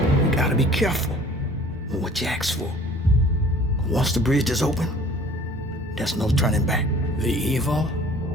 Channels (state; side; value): normal; both; correlation 0.49